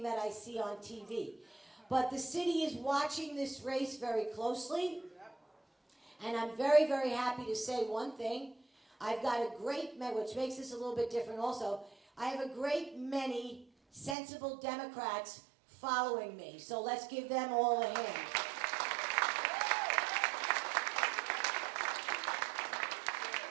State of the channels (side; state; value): left; drops out; at 14.2 s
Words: that I see on TV. But the city is watching this race very closely. And I'm very, very happy to say one thing. I've got a great, which makes this a little bit different also, I have a great many sensible Democrats following me. So let's give them all a hand.